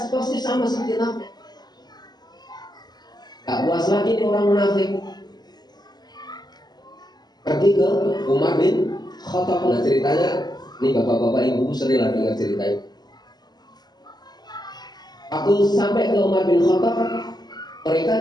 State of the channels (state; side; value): late; right; 0.20 ms